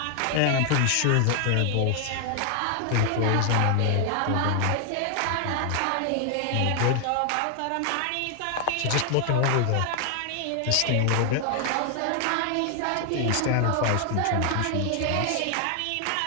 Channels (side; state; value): both; different; correlation 0.00